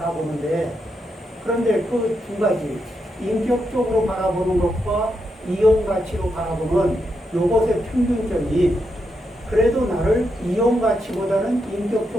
그런데 그 두 가지, 인격적으로 바라보는 것과 이용 가치로 바라보는 요것의 평균점이 그래도 나를 이용 가치보다는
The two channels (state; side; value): normal; both; correlation 0.83